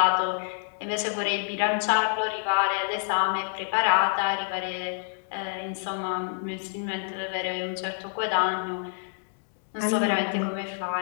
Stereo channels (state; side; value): silent; right; 60 dB below the other